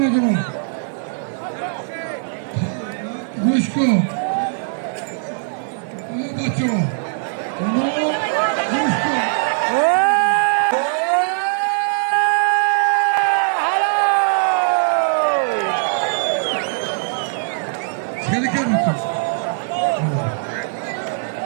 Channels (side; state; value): left; silent; 64 dB below the other